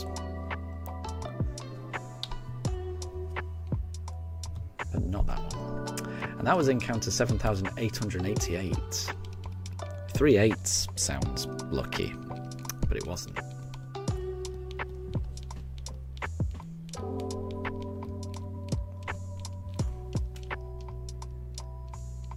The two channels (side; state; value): both; identical; correlation 1.00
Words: But not that one. And that was encounter 7,888. 3 8s sounds lucky, but it wasn't.